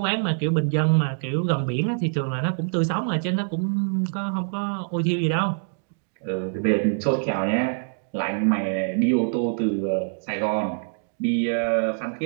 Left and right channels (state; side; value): silent; left; digital silence